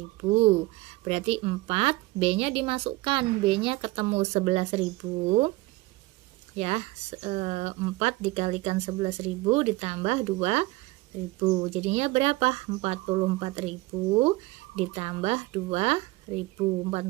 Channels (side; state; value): left; quieter; 20.7 dB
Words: Berarti 4, B-nya dimasukkan. B-nya ketemu 11.000. Ya, 4 dikalikan 11.000 ditambah 2000. Jadinya berapa? 44.000 ditambah 2000.